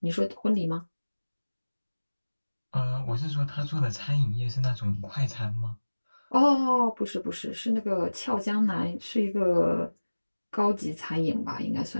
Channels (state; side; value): inverted; both; correlation -1.00